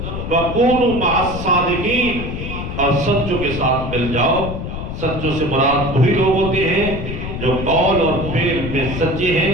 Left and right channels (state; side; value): noise; left; rumble, 6 dB below the sound